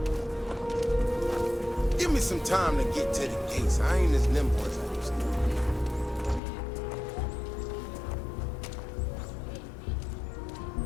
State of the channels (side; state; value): right; drops out; at 6.4 s